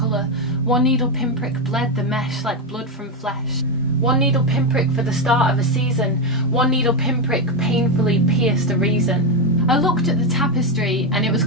one needle pinprick bled the mesh like blood from flesh. One needle pinprick for the start of a season, one needle pinprick painfully pierced a reason. I looked at the tapestry and it was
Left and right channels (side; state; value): both; normal; correlation 0.08